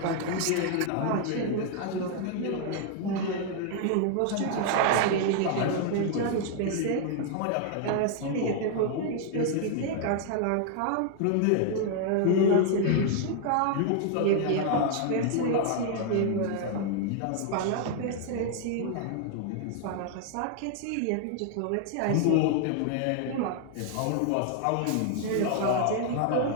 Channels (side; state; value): both; different; correlation 0.00